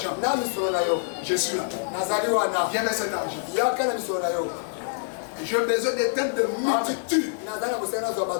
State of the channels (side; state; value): right; silent; digital silence